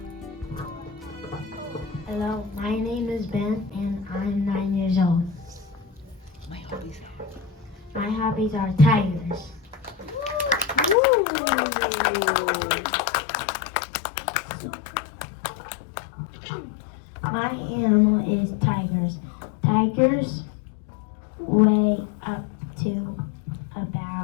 Hello, my name is Ben and I'm 9 years old. My hobbies are tigers. My animal is tigers. Tigers weigh up to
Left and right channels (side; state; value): right; drops out; at 11.0 s